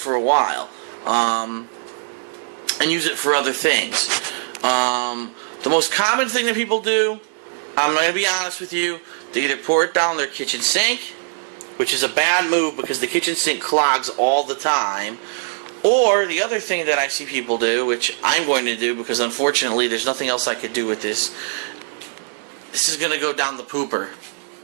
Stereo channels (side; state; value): left; silent; digital silence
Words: a while. And use it for other things. The most common thing that people do, I'm going to be honest with you, they either pour it down their kitchen sink, which is a bad move because the kitchen sink clogs all the time, or the other thing that I see people do, which I'm going to do because unfortunately there's nothing else I could do with this, this is going to go down the pooper.